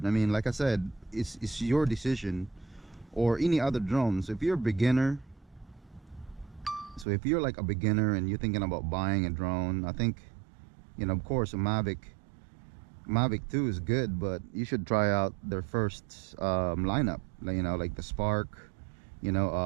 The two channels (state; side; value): drops out; left; at 7.1 s